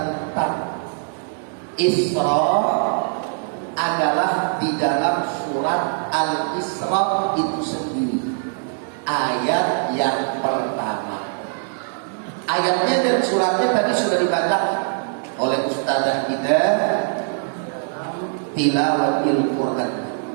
Isra adalah di dalam surat Al-Isra itu sendiri, ayat yang pertama. Ayatnya dan suratnya tadi sudah dibaca oleh ustazah kita tilawatil Quran.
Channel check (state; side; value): silent; left; 64 dB below the other